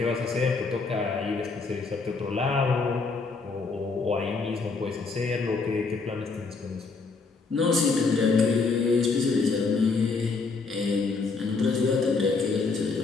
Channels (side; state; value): right; quieter; 4.3 dB